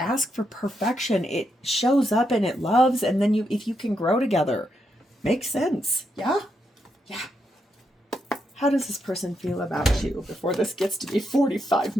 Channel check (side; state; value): both; normal; correlation 0.81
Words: for perfection. It shows up and it loves, and then if you can grow together. Makes sense. Yeah? Yeah. How does this person feel about you before this gets to be 45